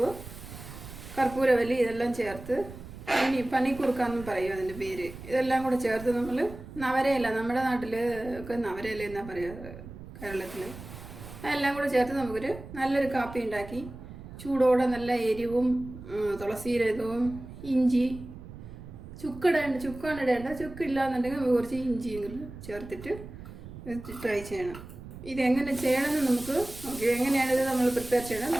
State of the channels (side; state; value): right; noise; rumble, 14 dB below the sound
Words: കർപ്പൂരവല്ലി ഇതെല്ലാം ചേർത്ത് പനിക്കുറുക്കാന്നും പറയും അതിൻ്റെ പേര്. ഇതെല്ലാം കൂടെ ചേർത്ത് നമ്മൾ നവരയില, നമ്മുടെ നാട്ടിൽ ഒക്കെ നവരയില എന്നാ പറയുക കേരളത്തിൽ, അതെല്ലാം കൂടെ ചേർത്ത് നമുക്കൊരു നല്ലൊരു കാപ്പി ഉണ്ടാക്കി ചൂടോടെ നല്ല എരിവും തുളസീരകവും ഇഞ്ചി ചുക്കാണ് ഇടേണ്ട. ചുക്കില്ലാന്നുണ്ടെങ്കിൽ നമുക്ക് കുറച്ച് ഇഞ്ചിയെങ്കിലും ചേർത്തിട്ട് ട്രൈ ചെയ്യണം. ഇതെങ്ങനെ ചെയ്യണമെന്ന് നമുക്ക് നോക്കി, എങ്ങനെയാണ് ഇത് നമ്മൾ പ്രിപ്പയർ ചെയ്യണം